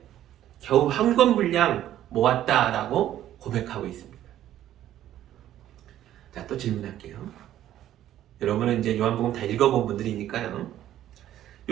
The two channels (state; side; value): quieter; left; 12.3 dB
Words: 겨우 한 권 분량 모았다라고 고백하고 있습니다. 자, 또 질문할게요. 여러분은 이제 요한복음 다 읽어본 분들이니까요.